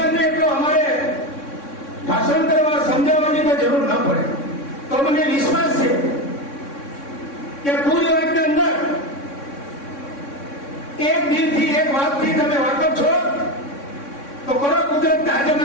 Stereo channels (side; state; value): right; late; 3.6 ms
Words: એટલો અમારે ભાષણ કરવા, સમજાવવાની કોઈ જરૂર ન પડે. તો મને વિશ્વાસ છે કે પૂરી વાતની અંદર એક દિલથી, એક વાતથી તમે વાકેફ છો તો કરો કુદરતને હાજર